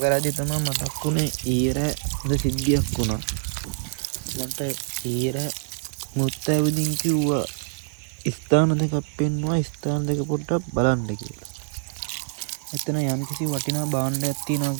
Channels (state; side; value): silent; left; digital silence